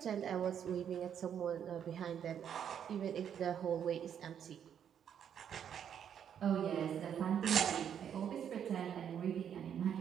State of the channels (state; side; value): quieter; left; 8.7 dB